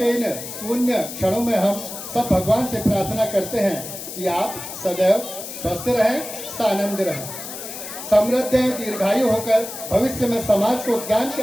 इन शून्य क्षणों में हम सब भगवान से प्रार्थना करते हैं कि आप सदैव स्वस्थ रहें, सानंद रहें, समृद्ध दीर्घायु होकर भविष्य में समाज को ज्ञान के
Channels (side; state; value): left; noise; hiss, 10 dB below the sound